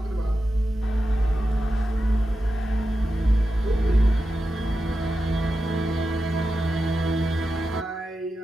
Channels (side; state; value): both; normal; correlation 0.90